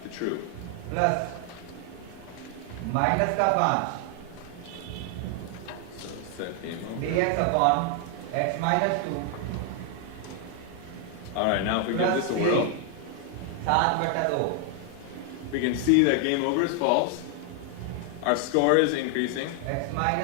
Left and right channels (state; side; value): different; both; correlation 0.00